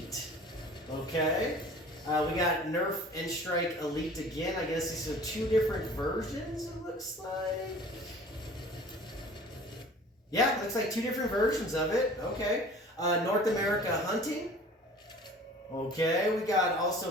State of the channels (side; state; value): both; normal; correlation 0.46